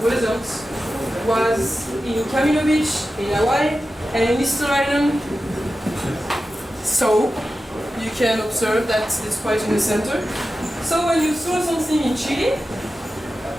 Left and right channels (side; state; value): both; normal; correlation 0.93